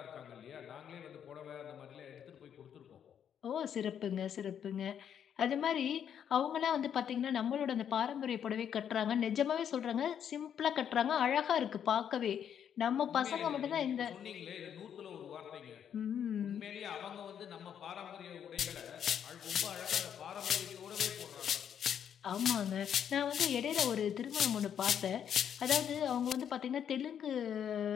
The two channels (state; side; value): quieter; right; 8.8 dB